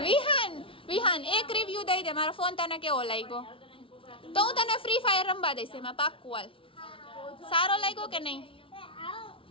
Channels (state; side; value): late; right; 0.26 ms